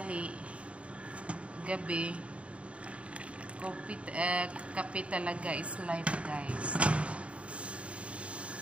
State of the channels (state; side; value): late; left; 0.062 ms